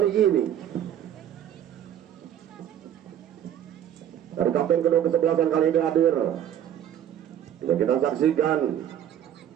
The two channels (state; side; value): quieter; left; 10.3 dB